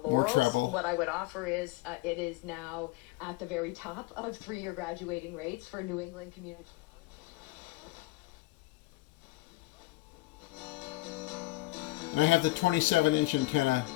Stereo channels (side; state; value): right; quieter; 20.2 dB